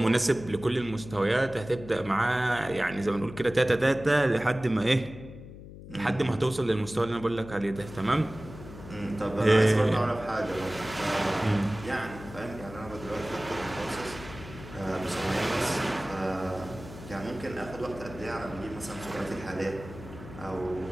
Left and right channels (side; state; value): left; noise; hum, 14 dB below the sound